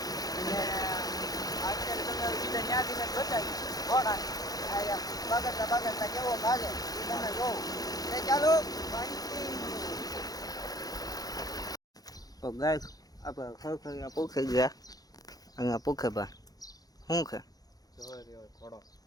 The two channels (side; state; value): right; late; 0.18 ms